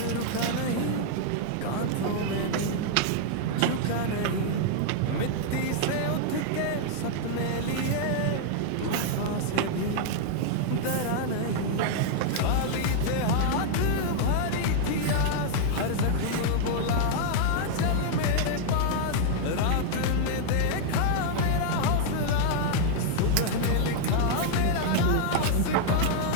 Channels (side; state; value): both; different; correlation -0.01